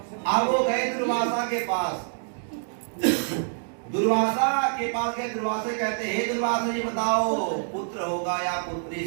अब वो गए दुर्वासा के पास। दुर्वासा के पास गए। दुर्वासा कहते हे दुर्वासा जी बताओ पुत्र होगा या पुत्री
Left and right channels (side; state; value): left; silent; 59 dB below the other